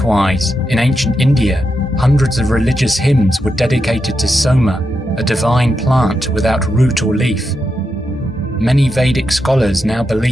in ancient India, hundreds of religious hymns were dedicated to Soma, a divine plant without root or leaf. Many Vedic scholars now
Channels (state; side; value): normal; both; correlation 0.85